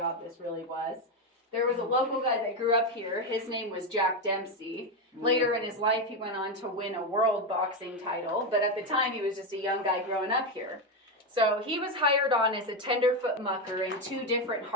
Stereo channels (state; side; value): normal; both; correlation 0.09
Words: this really was, there was a local guy that grew up here. His name was Jack Dempsey. Later in his life, he went on to win a world boxing title, but at the time, he was just a young guy growing up here. So he was hired on as a tenderfoot mucker in 2 different